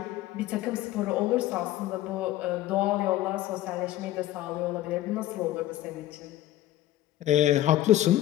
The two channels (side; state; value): right; quieter; 14.4 dB